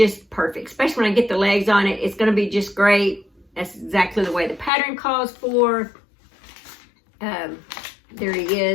perfect, especially when I get the legs on it. It's gonna be just great. That's exactly the way the pattern calls for. There he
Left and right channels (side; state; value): right; drops out; at 4.7 s